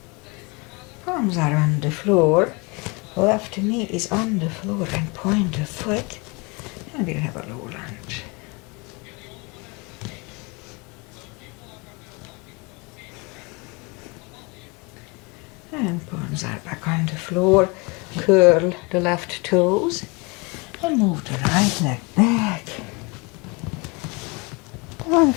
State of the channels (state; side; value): quieter; right; 28.6 dB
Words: Palms are on the floor. Left knee is on the floor and point the foot. And we'll have a low lunge. And palms are back on the floor. Curl the left toes. And move the right leg back. Down